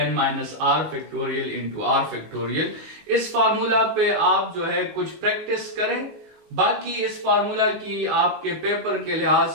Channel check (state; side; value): late; left; 19 ms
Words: n minus r factorial into r factorial. इस फार्मूला पे आप जो है कुछ प्रैक्टिस करें। बाकी इस फार्मूला की आपके पेपर के लिहाज